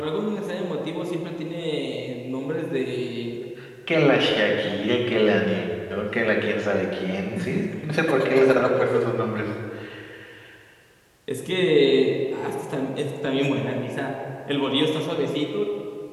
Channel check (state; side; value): identical; both; correlation 1.00